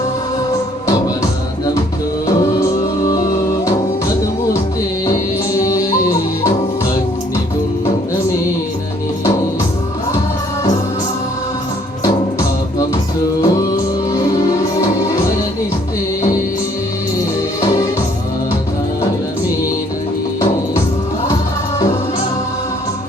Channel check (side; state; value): both; normal; correlation 0.62